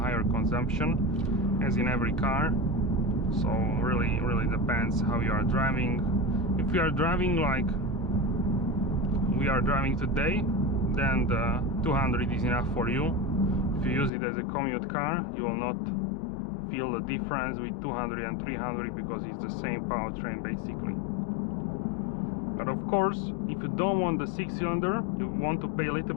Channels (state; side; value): drops out; right; at 14.1 s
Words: consumption, as in every car. So really depends how you are driving. If you are driving like we are driving today, then the 200 is enough for you. If you use it as a commute car, you will not feel the difference with 200 and 300 because it's the same powertrain basically. But of course, if you don't want the 6-cylinder, you want to pay a little